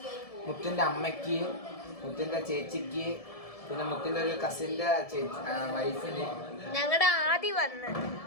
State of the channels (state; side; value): late; right; 1.7 ms